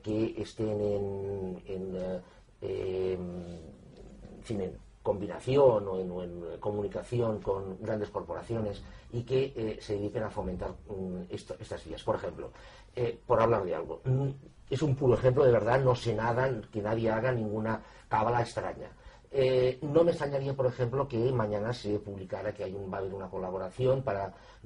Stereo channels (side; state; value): both; identical; correlation 1.00